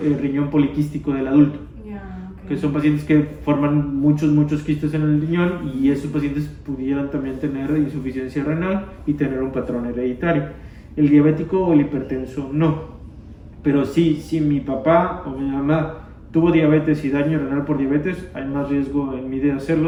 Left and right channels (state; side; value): identical; both; correlation 1.00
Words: poliquístico del adulto, que son pacientes que forman muchos quistes en el riñón y esos pacientes pudieran también tener insuficiencia renal y tener un patrón hereditario. El diabético o el hipertenso no, pero sí, si mi papá o mi mamá tuvo diabetes y daño renal por diabetes, hay más riesgo en mí de